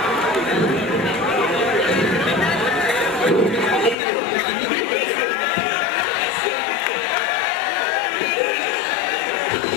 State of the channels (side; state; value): right; drops out; at 4.0 s